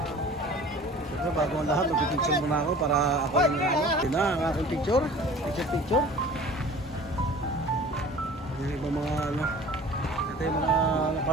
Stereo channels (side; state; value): both; normal; correlation 0.44